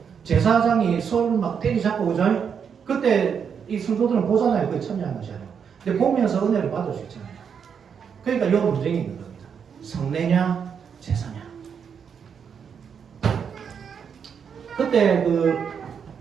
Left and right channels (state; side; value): quieter; left; 7.1 dB